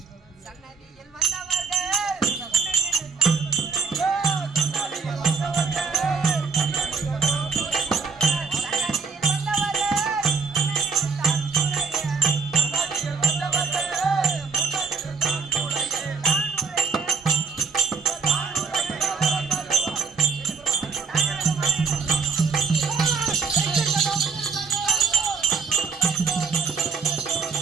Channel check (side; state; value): left; quieter; 4.9 dB